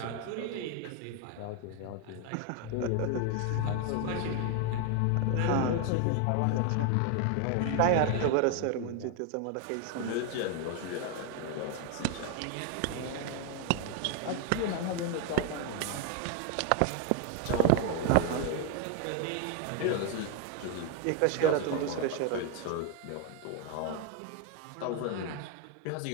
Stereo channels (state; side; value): different; both; correlation 0.01